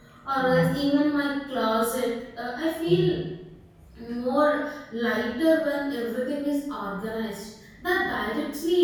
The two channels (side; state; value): both; identical; correlation 1.00